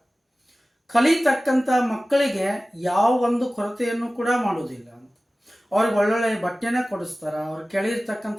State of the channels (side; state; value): both; normal; correlation 0.97